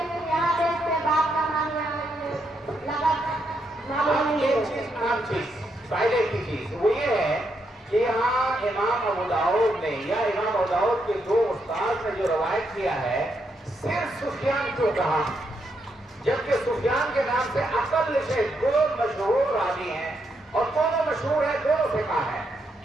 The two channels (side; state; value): both; normal; correlation 0.79